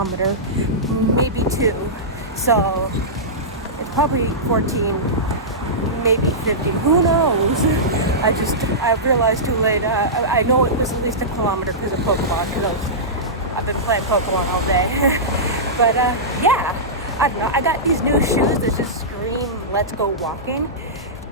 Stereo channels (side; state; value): both; normal; correlation -0.16